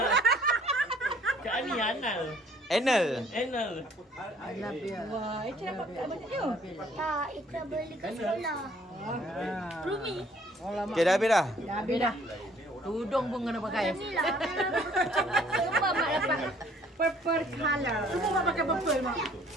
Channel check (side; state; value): both; normal; correlation 0.59